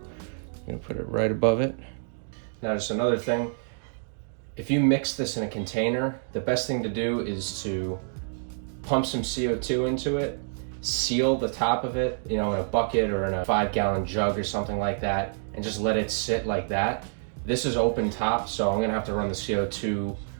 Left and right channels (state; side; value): silent; left; digital silence